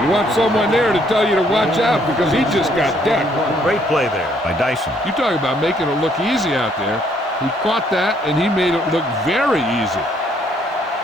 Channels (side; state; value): both; normal; correlation 0.67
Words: want someone there to tell you to watch out because he just got decked. Great play there by Dyson. You talk about making it look easy out there. He caught that and he made it look very easy.